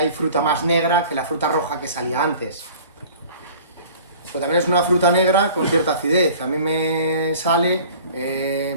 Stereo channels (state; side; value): inverted; both; correlation -0.46